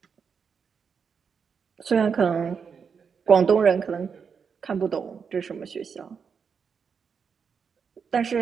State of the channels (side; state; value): left; quieter; 6.3 dB